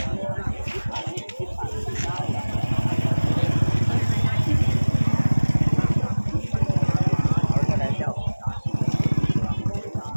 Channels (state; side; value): inverted; both; correlation -1.00